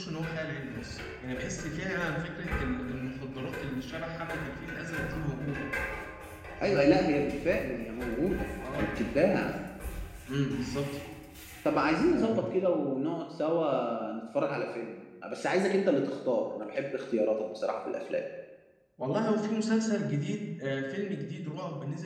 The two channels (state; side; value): identical; both; correlation 1.00